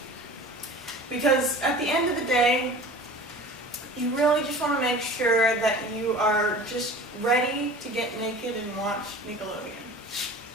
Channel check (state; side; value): normal; both; correlation 0.40